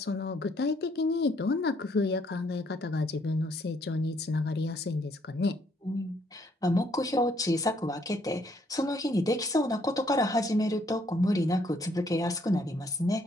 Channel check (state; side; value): normal; both; correlation 0.68